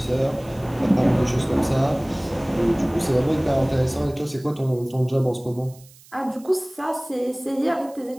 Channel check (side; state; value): right; noise; hiss, 24 dB below the sound